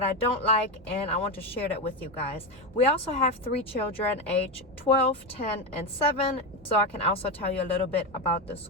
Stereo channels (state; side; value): normal; both; correlation 0.14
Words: I don't like, and I want to share that with you guys. We also have 3 children, age 12, 10, and 7, so I can also tell you a little bit about the